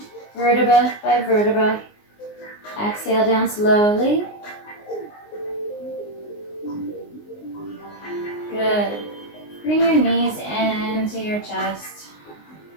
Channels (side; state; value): right; late; 19 ms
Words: vertebra by vertebra. Exhale down slowly. Good. Bring your knees into your chest.